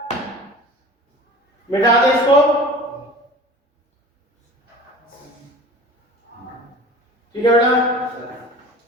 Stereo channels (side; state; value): both; normal; correlation 0.40